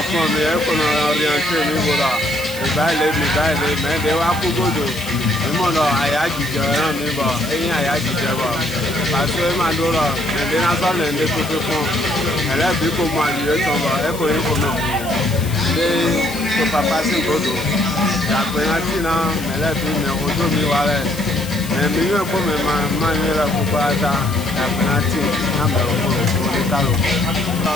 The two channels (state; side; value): noise; left; hiss, 13 dB below the sound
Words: fún mi ẹkọ̀rọ̀ ọ̀rìyànṣẹ́ mi wòrà ìbáyìí mẹ́ẹ̀ẹ́dẹ́ wá kú gbòdò ìmọ̀nà àyájíjẹ ẹran mi bọ̀ ẹ̀yìn àyájíjẹ bọ̀ pàṣẹ máa dúró ẹ̀dẹ́ náà ẹ̀dẹ́ tuntun fún ẹlẹ́bí kò mọ àdìyẹ tán bọ̀ ẹkọ̀ yìí kò mọ̀ ẹ̀dẹ́ tọ̀pàpá sí gbòdò ìyàgbẹ́yàtì náà ẹlẹ́bí mi ojú mi wà rẹ̀ mi yóò kó mi máa ń yẹra gbogbo ata ìyàgbẹ́yàtì náà bẹ̀rẹ̀ fún òní kálò.